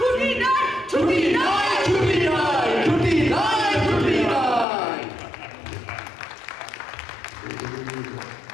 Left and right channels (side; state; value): right; drops out; at 4.7 s